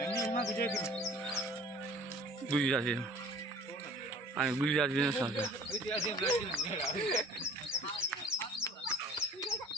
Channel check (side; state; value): both; normal; correlation 0.49